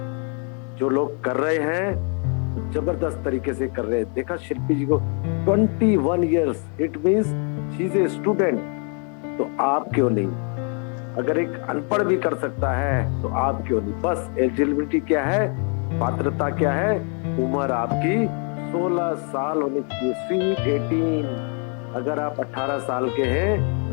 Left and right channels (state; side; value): quieter; right; 39.6 dB